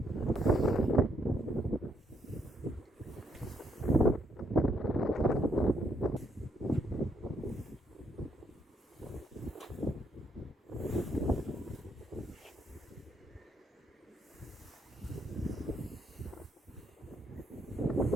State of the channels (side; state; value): both; normal; correlation 0.73